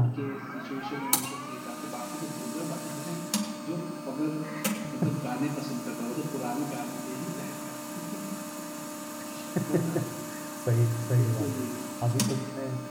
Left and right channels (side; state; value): both; identical; correlation 1.00